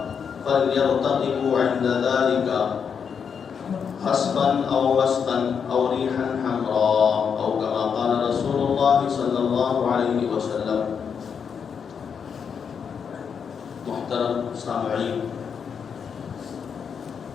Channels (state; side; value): quieter; right; 6.8 dB